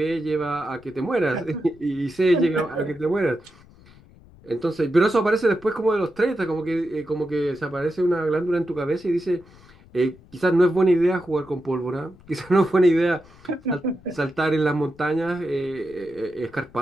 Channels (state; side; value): noise; left; rumble, 25 dB below the sound